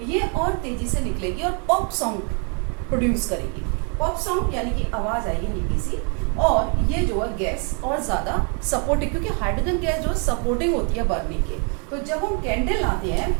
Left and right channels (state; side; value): quieter; left; 38.0 dB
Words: ये और तेजी से निकलेगी और पॉप साउंड प्रोड्यूस करेगी। पॉप साउंड यानी कि आवाज आएगी हल्की सी, और ये जो है गैस और ज़्यादा सपोर्टिंग, क्योंकि हाइड्रोजन गैस जो सपोर्टिंग होती है बर्निंग के, तो जब हम कैंडल लाते हैं